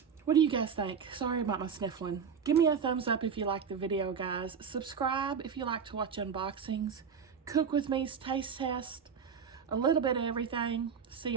What do you guys think? Sorry about my sniffling. Give me a thumbs up if you like the video, guys. Subscribe if you like to watch unboxings. Cook with me's taste test. A little bit of everything. See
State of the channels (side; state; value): left; quieter; 6.7 dB